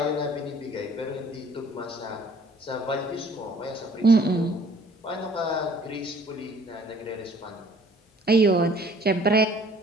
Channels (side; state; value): both; normal; correlation 0.55